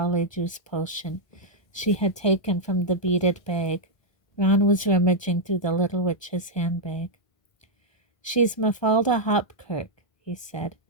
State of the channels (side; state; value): right; late; 1.5 ms